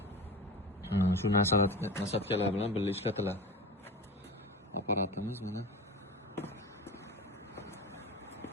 Shu nasatkalar bilan birga ishlatiladi. Apparatimiz mana.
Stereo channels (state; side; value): normal; both; correlation 0.30